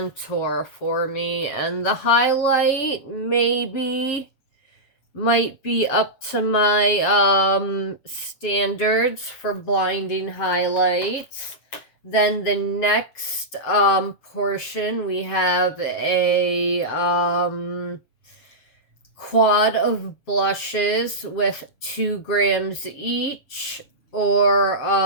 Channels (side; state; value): right; late; 7.2 ms